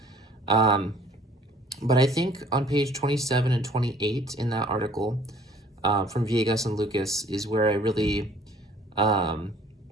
Um, but I think on page 27 and 28 in that article from Villegas and Lucas is where I really, um,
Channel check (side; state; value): both; normal; correlation 0.55